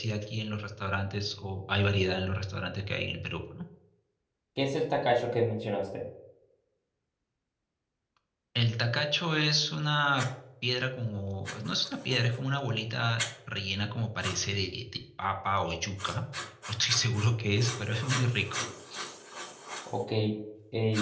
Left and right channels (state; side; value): identical; both; correlation 1.00